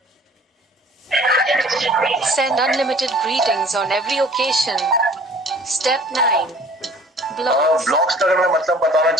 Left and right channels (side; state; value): both; normal; correlation 0.51